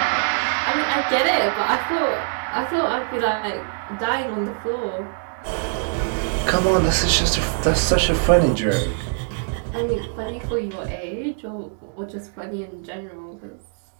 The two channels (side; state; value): left; silent; digital silence